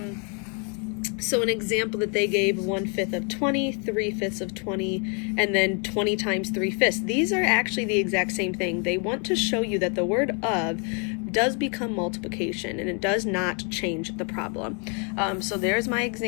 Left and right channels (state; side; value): quieter; right; 36.8 dB